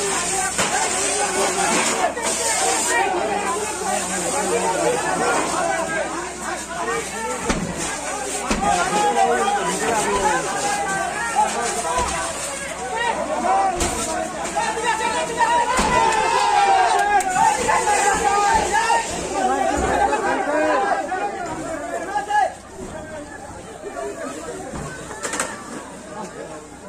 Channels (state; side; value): identical; both; correlation 1.00